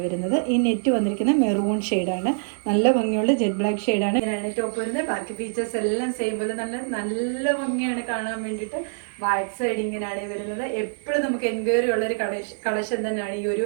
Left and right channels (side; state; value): left; silent; digital silence